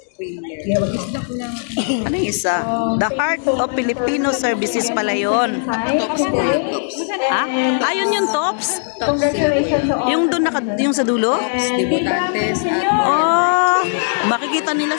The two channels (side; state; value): right; silent; digital silence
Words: You have a gift. Ano yung isa? The Heart of Filipino Services pala yun. Ha? Ayun yung tops? Congratulations to all. Yung doon yung sa dulo? Oh, makikita nila